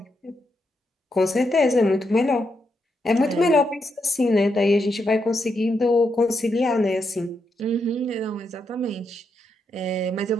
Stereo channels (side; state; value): both; normal; correlation 0.81